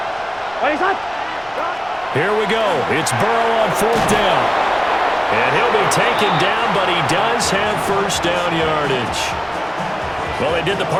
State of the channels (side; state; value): right; noise; rumble, 26 dB below the sound